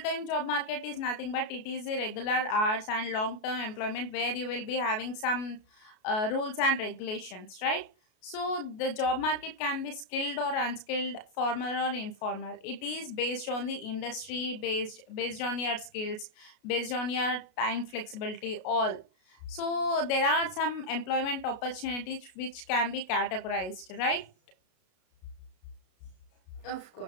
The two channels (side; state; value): right; late; 33 ms